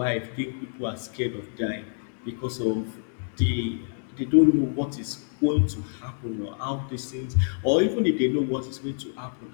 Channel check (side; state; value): right; silent; digital silence